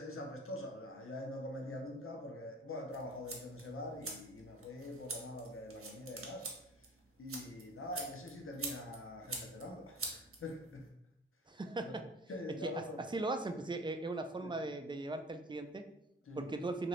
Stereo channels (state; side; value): normal; both; correlation 0.45